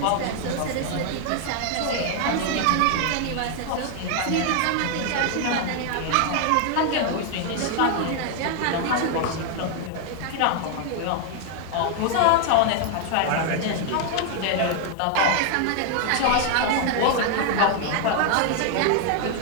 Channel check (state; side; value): different; both; correlation 0.00